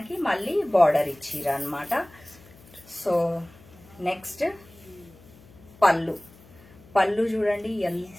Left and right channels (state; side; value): noise; left; hum, 24 dB below the sound